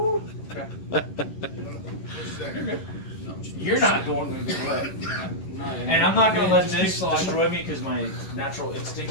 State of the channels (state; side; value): late; right; 11 ms